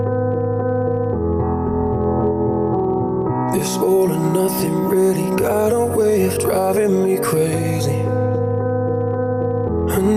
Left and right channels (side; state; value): both; identical; correlation 1.00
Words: This all or nothing really got a way of driving me crazy. I